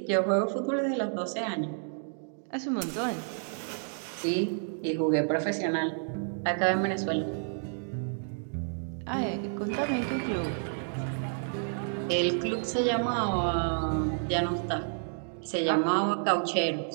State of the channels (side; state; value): left; silent; digital silence